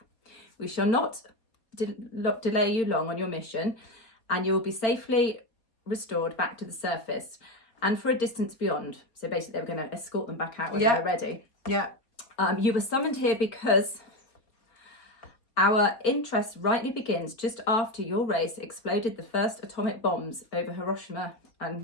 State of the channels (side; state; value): right; late; 4.2 ms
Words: We shall not delay you long on your mission, and you will be safely restored back to the surface and for a distance beyond." So basically they were going to escort them back out when they were ready. Yeah. "You were summoned here because our interest rightly begins just after your race exploded the first atomic bombs over Hiroshima